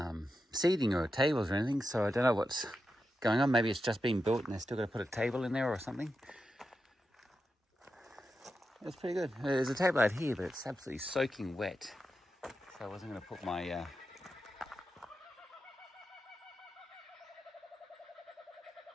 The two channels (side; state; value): both; normal; correlation 0.89